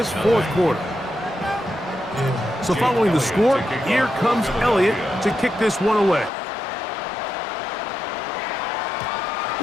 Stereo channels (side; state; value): right; drops out; at 6.3 s